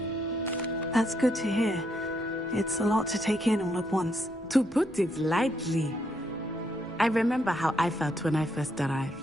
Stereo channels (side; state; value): both; normal; correlation 0.76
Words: That's good to hear. It's a lot to take in all at once. To put it lightly. I remember how I felt when I first